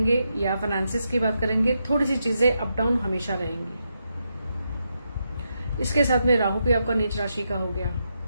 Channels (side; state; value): both; inverted; correlation -0.83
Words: या फाइनेंसिस की बात करेंगे, थोड़ी सी चीजें अप डाउन हमेशा रहेंगी। इसके साथ में राहु भी आपका नीच राशि का हो गया।